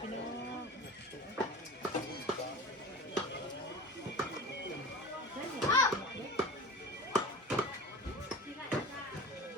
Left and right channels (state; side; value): normal; both; correlation 0.34